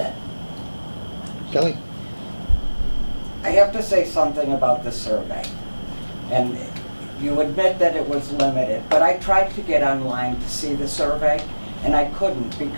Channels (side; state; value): both; inverted; correlation -1.00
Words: Kelly? I have to say something about the survey. And you admit that it was limited, but I tried to get online to see the survey, and I couldn't